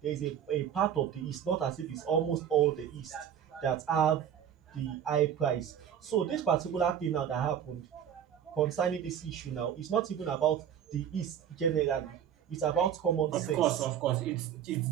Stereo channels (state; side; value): quieter; left; 9.2 dB